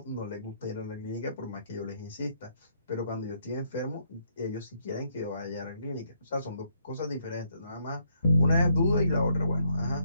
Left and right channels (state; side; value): inverted; both; correlation -0.72